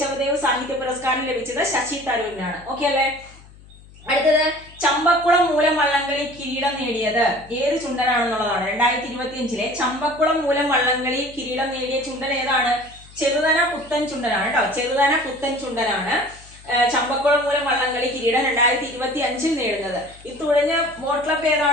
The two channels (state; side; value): noise; left; hum, 22 dB below the sound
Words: സാഹിത്യ പുരസ്കാരം ലഭിച്ചത് ശശി തരൂരിനാണ്. ഓക്കെ അല്ലേ. അടുത്തത്, ചമ്പക്കുളം മൂലം വള്ളംകളി കിരീടം നേടിയത് ഏത് ചുണ്ടനാണെന്നുള്ളതാണ്. 2025 ചമ്പക്കുളം മൂലം വള്ളംകളി കിരീടം നേടിയ ചുണ്ടൻ ഏതാണ്? ചെറുതന പുത്തൻ ചുണ്ടനാണ് കേട്ടോ. ചെറുതന പുത്തൻ ചുണ്ടനാണ് ചമ്പക്കുളം മൂലം വള്ളംകളി കിരീടം 2025 നേടുന്നത്. ഈ തുഴഞ്ഞ ബോട്ട് ക്ലബ്